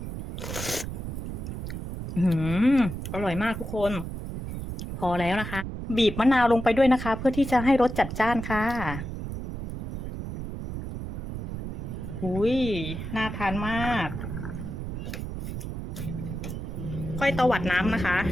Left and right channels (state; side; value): noise; right; rumble, 6 dB below the sound